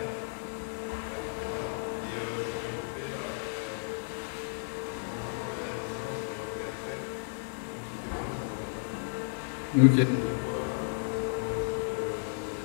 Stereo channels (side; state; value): right; silent; digital silence